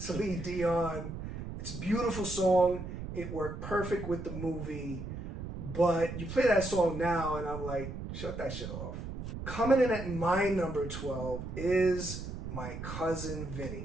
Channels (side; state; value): right; noise; rumble, 7 dB below the sound